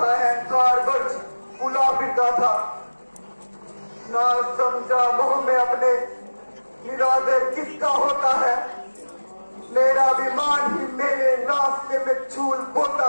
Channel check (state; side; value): inverted; both; correlation -1.00